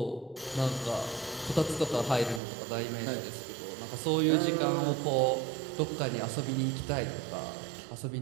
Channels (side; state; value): left; drops out; at 2.4 s